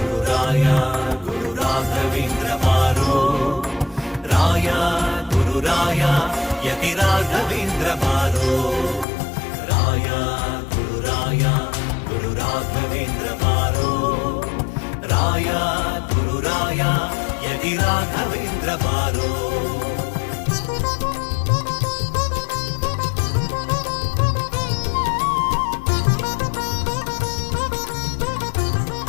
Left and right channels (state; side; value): drops out; right; at 9.1 s